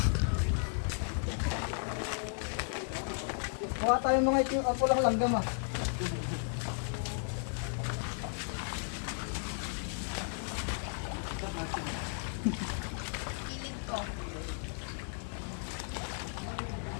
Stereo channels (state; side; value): silent; right; 55 dB below the other